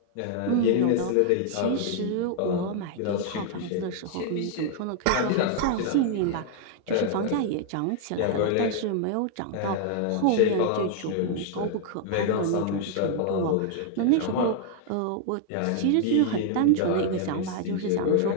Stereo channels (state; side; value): different; both; correlation 0.00